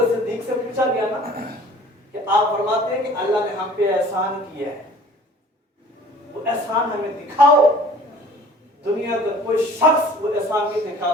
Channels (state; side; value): normal; both; correlation 0.49